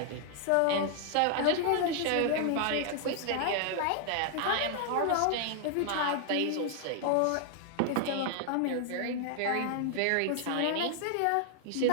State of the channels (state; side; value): different; both; correlation 0.00